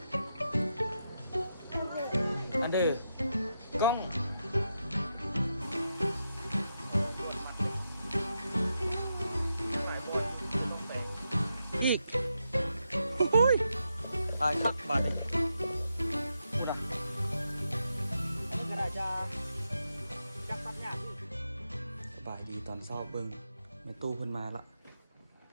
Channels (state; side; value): inverted; both; correlation -0.84